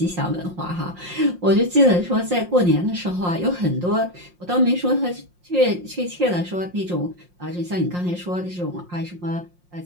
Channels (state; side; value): late; left; 5.6 ms